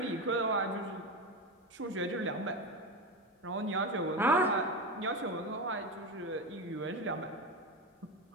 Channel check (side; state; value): both; normal; correlation 0.19